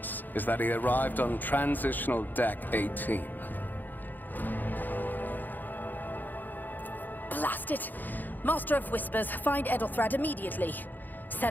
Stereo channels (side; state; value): right; late; 0.087 ms